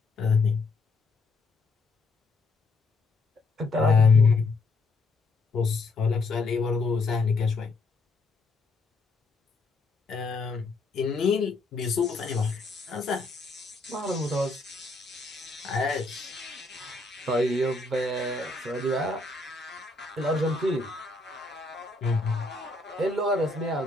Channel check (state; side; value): quieter; right; 3.5 dB